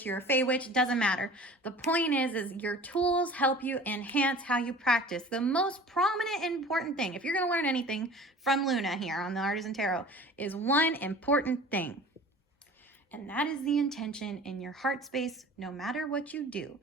you're a Fey witch, it doesn't matter. The point is your tools help you enhance how you practice. The most prominent and important thing, if you're going to learn anything from Luna here on the Artisan Tarot, is one important thing. And that is the intention in your heart space, no matter what you do,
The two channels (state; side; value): normal; both; correlation 0.43